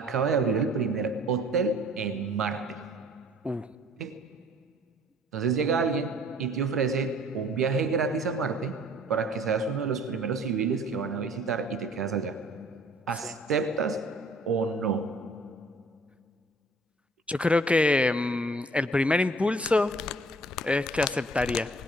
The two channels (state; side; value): normal; both; correlation 0.54